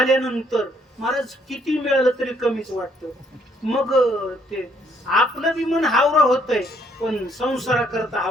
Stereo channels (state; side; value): normal; both; correlation 0.66